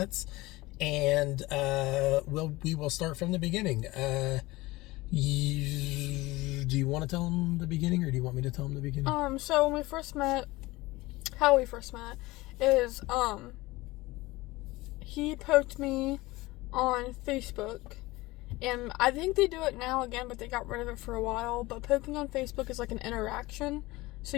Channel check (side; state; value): right; quieter; 20.3 dB